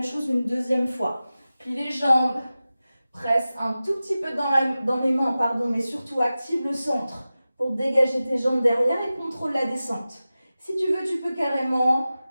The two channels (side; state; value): both; inverted; correlation -0.95